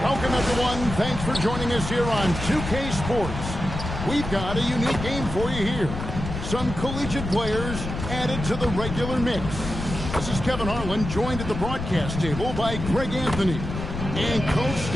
Welcome, everyone. Thanks for joining us here on 2K Sports. We've got a unique game for you here. Some collegiate players added to the regular mix. This is Kevin Harlan, joined at the broadcast table by Greg Anthony and Coach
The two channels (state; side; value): noise; left; rumble, 6 dB below the sound